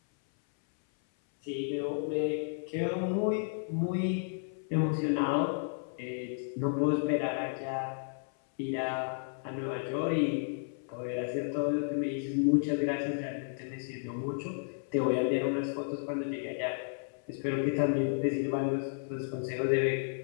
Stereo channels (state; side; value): silent; right; 56 dB below the other